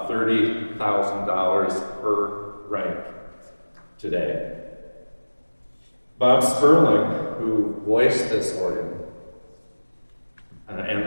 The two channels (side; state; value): both; inverted; correlation -1.00